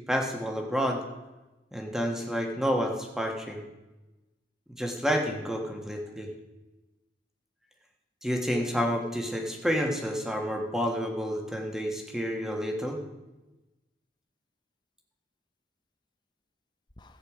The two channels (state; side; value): normal; both; correlation 0.78